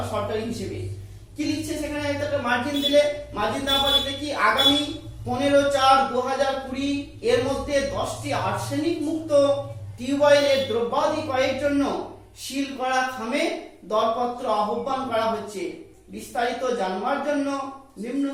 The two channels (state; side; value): identical; both; correlation 1.00